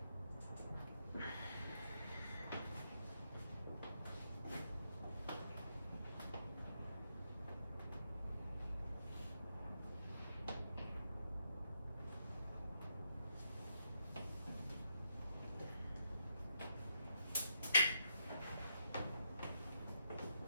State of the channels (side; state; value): both; inverted; correlation -0.80